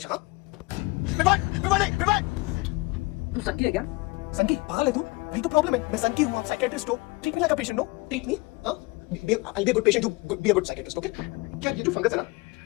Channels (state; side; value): quieter; right; 24.6 dB